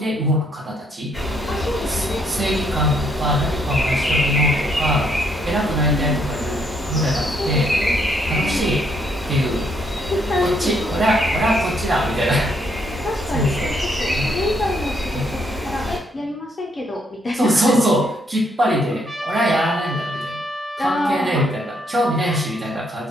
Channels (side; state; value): both; normal; correlation 0.72